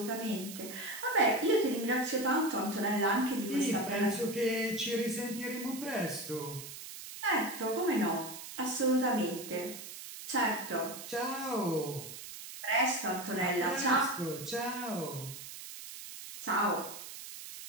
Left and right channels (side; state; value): right; noise; hiss, 11 dB below the sound